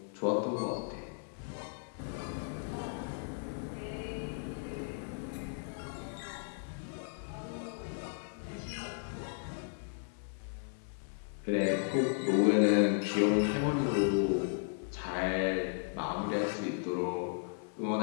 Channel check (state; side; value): silent; right; 54 dB below the other